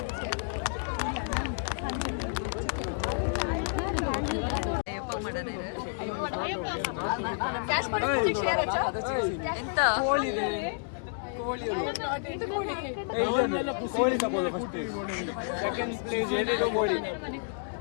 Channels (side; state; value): right; silent; digital silence